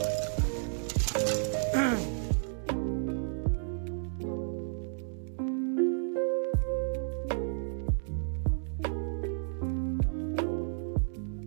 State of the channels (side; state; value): left; silent; digital silence